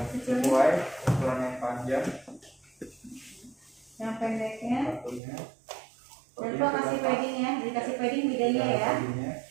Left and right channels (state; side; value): drops out; left; at 5.2 s